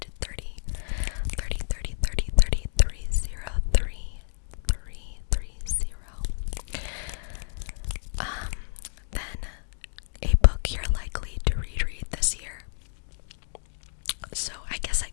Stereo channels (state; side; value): silent; right; digital silence